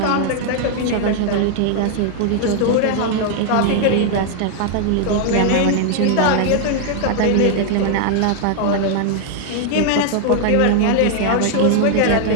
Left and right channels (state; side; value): different; both; correlation 0.00